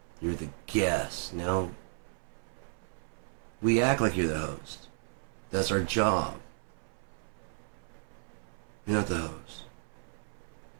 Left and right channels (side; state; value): left; silent; 55 dB below the other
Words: You're the guest, no? We act like you're the host. That's our job. You're not the host.